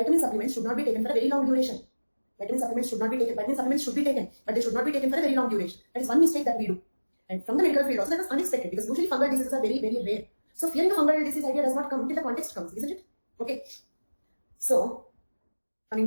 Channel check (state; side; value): inverted; both; correlation -1.00